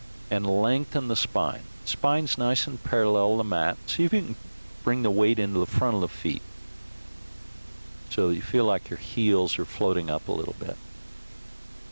and lengthen the spine. Spine's nice and parallel to the mat. See if you can bring the weight into the front of the feet so that you feel like your heels are floating up a little bit.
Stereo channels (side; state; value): both; inverted; correlation -1.00